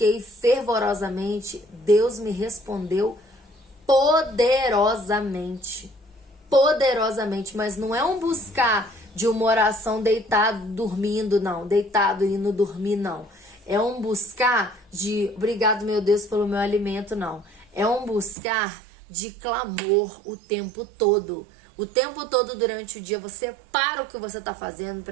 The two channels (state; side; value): drops out; left; at 18.4 s